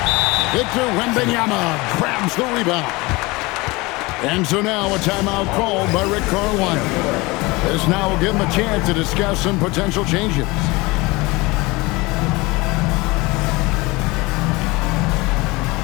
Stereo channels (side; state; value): right; quieter; 23.4 dB